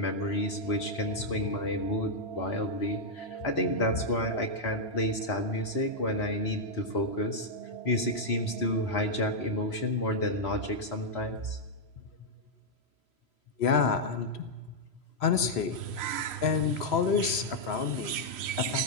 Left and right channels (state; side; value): late; right; 3.0 ms